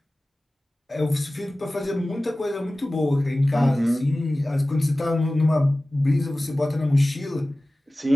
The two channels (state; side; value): normal; both; correlation 0.97